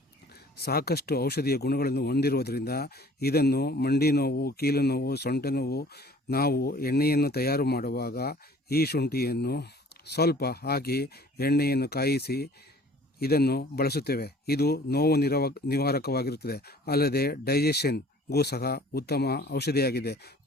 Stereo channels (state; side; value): normal; both; correlation 0.51